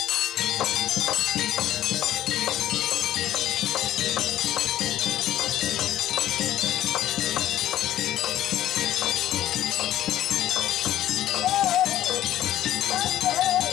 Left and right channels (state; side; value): quieter; right; 12.9 dB